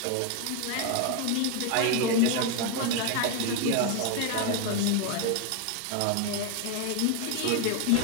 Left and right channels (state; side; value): different; both; correlation 0.01